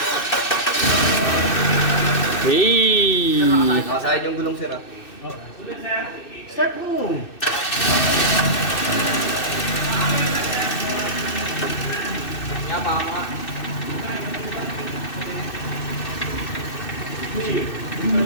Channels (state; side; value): late; right; 2.6 ms